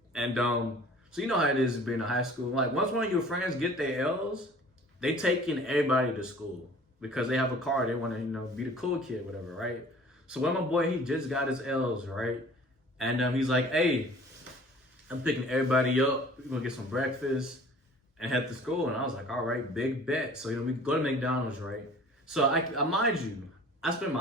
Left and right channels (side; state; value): both; normal; correlation 0.48